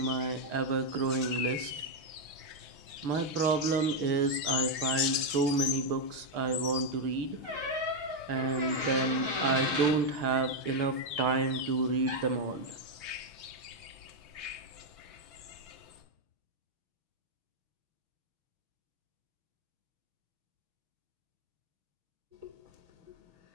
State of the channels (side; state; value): left; late; 6.3 ms